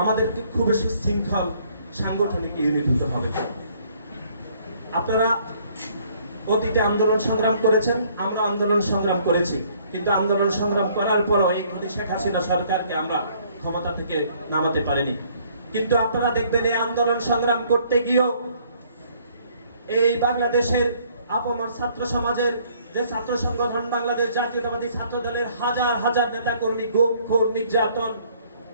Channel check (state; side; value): inverted; both; correlation -0.62